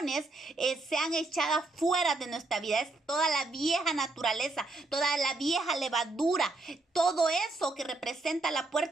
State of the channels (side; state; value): left; quieter; 3.1 dB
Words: sean echadas fuera de nuestra vida. Es toda la vieja naturaleza, toda la vieja levadura, todo eso que representa la